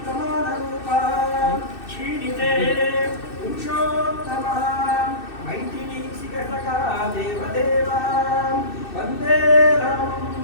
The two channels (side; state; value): right; late; 2.6 ms